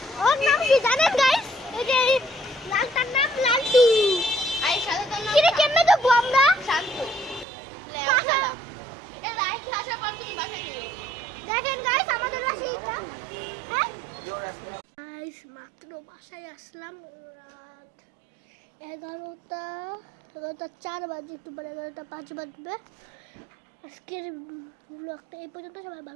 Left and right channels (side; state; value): left; drops out; at 7.5 s